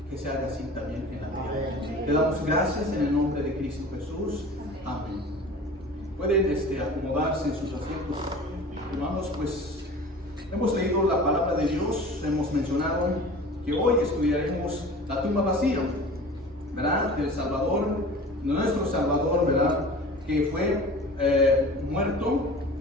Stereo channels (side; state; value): both; normal; correlation 0.40